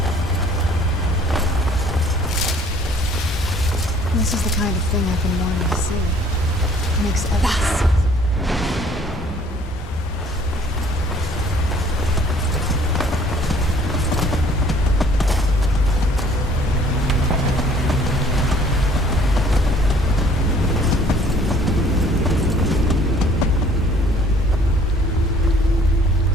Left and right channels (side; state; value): both; normal; correlation 0.57